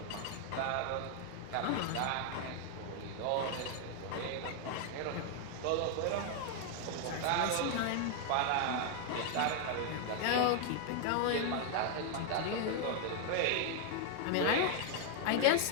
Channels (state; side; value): different; both; correlation 0.00